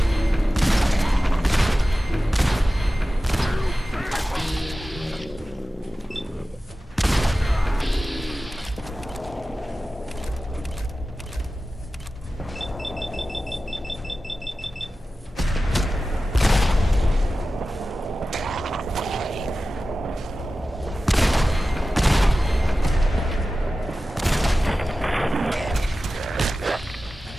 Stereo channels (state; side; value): normal; both; correlation 0.95